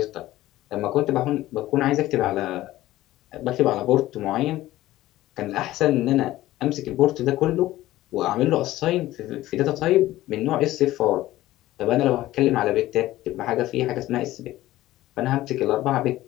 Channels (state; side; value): quieter; right; 15.8 dB